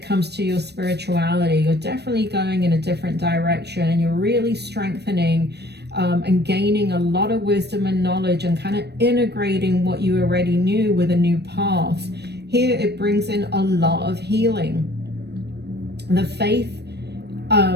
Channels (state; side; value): late; left; 0.48 ms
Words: comes to your spirituality. You're definitely going in a different direction, and you're really strengthening and gaining a lot of wisdom and knowledge and kind of integrating what you already knew with a new path. Here it brings in a lot of healing. The faith,